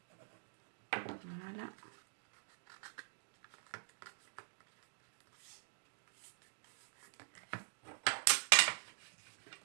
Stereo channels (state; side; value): silent; left; digital silence